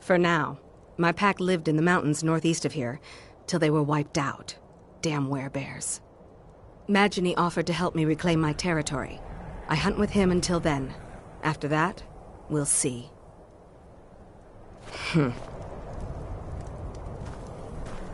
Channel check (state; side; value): identical; both; correlation 1.00